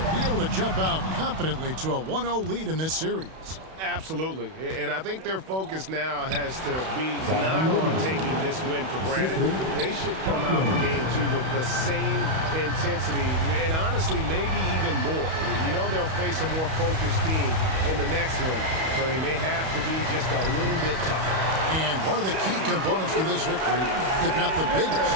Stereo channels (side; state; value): left; late; 31 ms